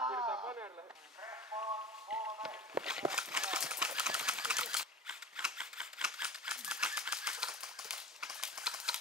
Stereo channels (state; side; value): normal; both; correlation 0.35